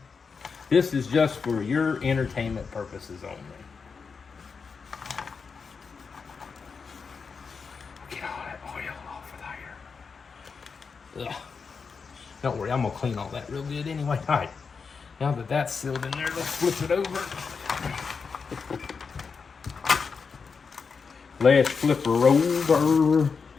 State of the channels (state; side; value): quieter; right; 5.3 dB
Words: This is just for your entertainment purposes only. Get all that oil off of there. Ugh. Don't worry, I'm gonna clean all that real good anyway. All right, now that that's sealed in there, let's flip it over. Let's flip her over.